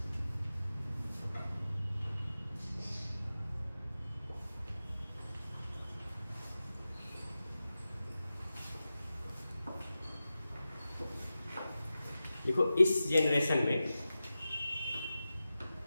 देखो इस जनरेशन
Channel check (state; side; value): inverted; both; correlation -0.94